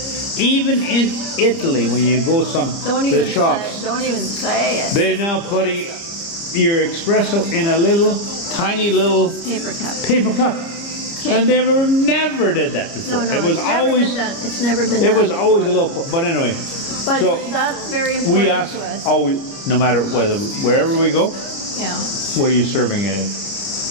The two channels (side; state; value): right; late; 29 ms